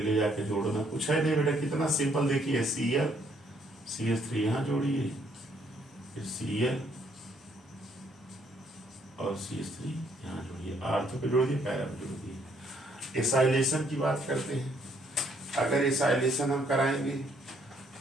जाके जोड़ना, कुछ है नहीं बेटा, कितना सिंपल। देखिए Cl CH3 यहाँ जोड़िए, Cl और CH3 यहाँ जोड़िए, आर्थो पे जोड़ दिए, पैरा पे जोड़ दिए। एसाइलेशन की बात करते हैं। अगर एसाइलेशन हम कराएंगे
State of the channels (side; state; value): both; normal; correlation 0.68